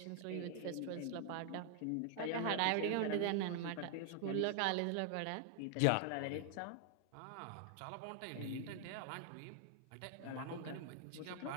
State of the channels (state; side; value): different; both; correlation 0.00